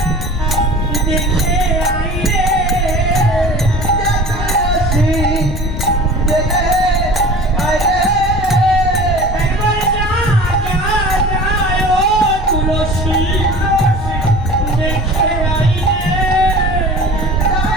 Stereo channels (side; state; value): both; normal; correlation 0.40